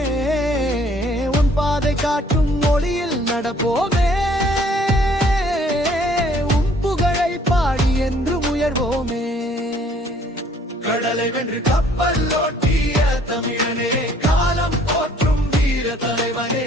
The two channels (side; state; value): both; normal; correlation 0.59